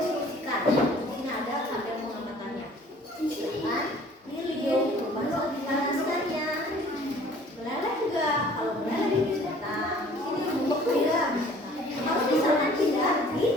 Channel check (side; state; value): both; normal; correlation 0.53